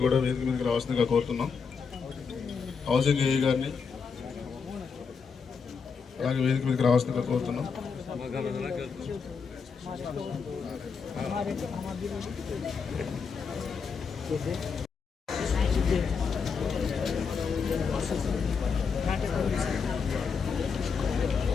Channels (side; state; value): right; quieter; 5.7 dB